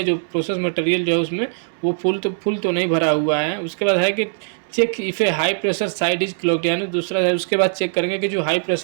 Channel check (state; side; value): silent; left; digital silence